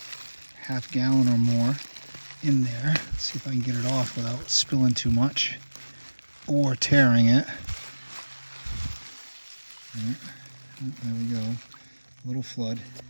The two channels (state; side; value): inverted; both; correlation -1.00